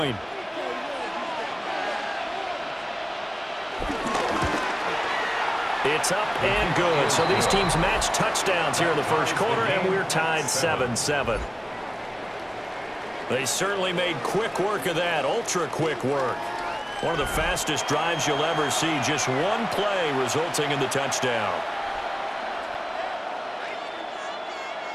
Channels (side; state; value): both; identical; correlation 1.00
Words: It's up and good. So these teams match touchdowns here in the first quarter, and we're tied 7-7. They certainly made quick work of that, ultra-quick work. One of the fastest drives you'll ever see, just one play resulting in the touchdown.